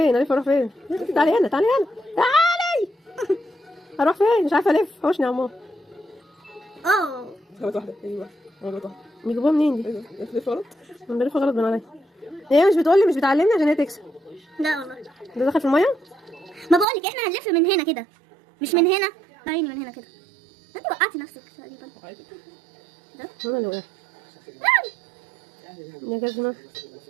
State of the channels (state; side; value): drops out; left; at 16.9 s